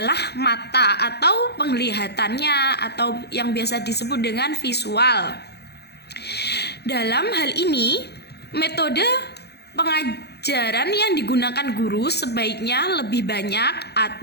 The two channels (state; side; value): late; right; 0.48 ms